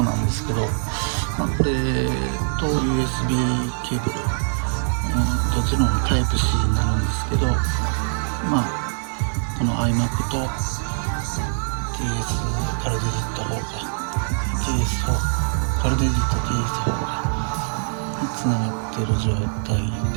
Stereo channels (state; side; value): silent; left; 64 dB below the other